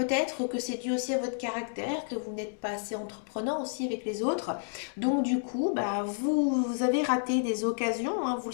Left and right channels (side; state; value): right; silent; digital silence